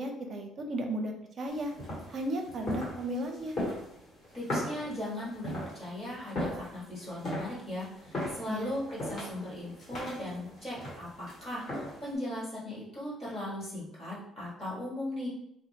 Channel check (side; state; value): both; normal; correlation 0.67